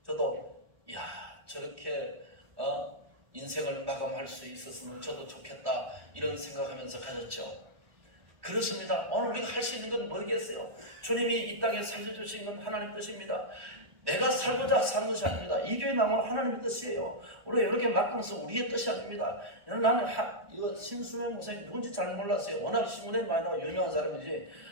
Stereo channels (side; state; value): left; late; 1.1 ms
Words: 저도 저렇게 인생을 마감할 수 있었으면 저도 좋겠다 이런 생각하면서 가졌죠. 그렇습니다. 오늘 우리가 할 수 있는 건 뭐겠어요? 주님이 이 땅에 살려주신 건 하나님 뜻입니다. 내가 살고자 사는 것이 아닙니다. 이 교회 나오면 하나님의 뜻이에요. 우리가 이렇게 막강해서 우리의 뜻이 아닙니다. 나는 이거 신수명 목사님 누군지 잘 몰랐어요. 워낙 신문에 많이 나와 유명한 사람이지